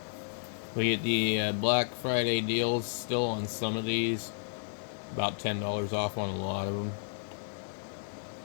We get the Black Friday deals still on some of these. About $10 off on a lot of them.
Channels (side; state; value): right; silent; digital silence